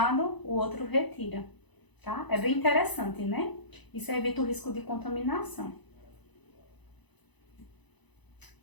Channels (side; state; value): right; late; 1.0 ms